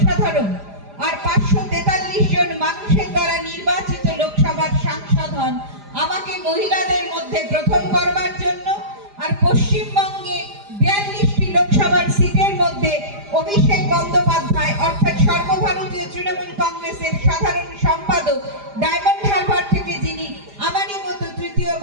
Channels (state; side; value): late; left; 4.9 ms